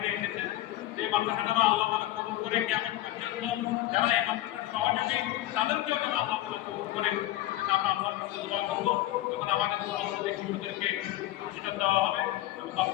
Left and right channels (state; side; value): quieter; right; 15.3 dB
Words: এসেছেন। এই মাদ্রাসাটা আল্লাহ তাআলা কবুল করে, কেমন পর্যন্ত যারা এই মাদ্রাসার সহযোগী তাদেরকেও যেন আল্লাহ তাআলা কবুল করে। আমরা আল্লাহর কাছে দোয়া করব, যখন আমাদের মুসলমানদের শিশুদেরকে প্রতিষ্ঠান দেওয়া হবে এবং